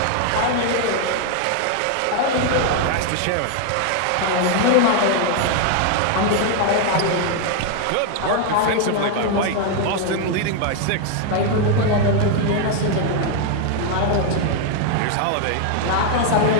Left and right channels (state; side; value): different; both; correlation 0.00